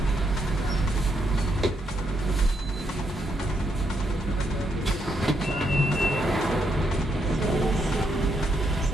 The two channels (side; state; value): both; normal; correlation 0.78